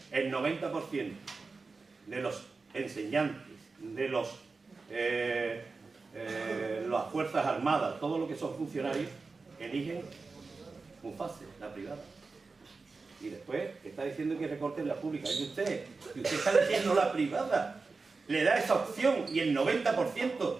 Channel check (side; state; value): left; quieter; 4.1 dB